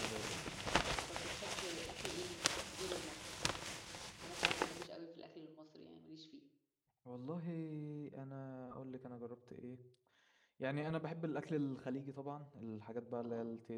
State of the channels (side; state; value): both; identical; correlation 1.00